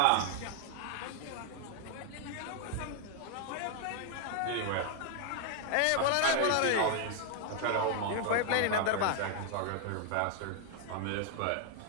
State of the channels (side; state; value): both; different; correlation 0.00